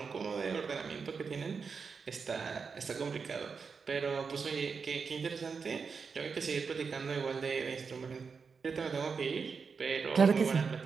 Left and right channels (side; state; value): left; quieter; 5.4 dB